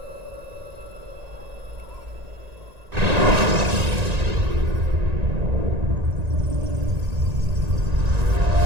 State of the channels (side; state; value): left; late; 1.9 ms